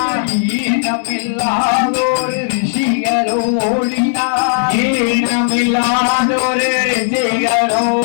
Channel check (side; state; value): right; silent; digital silence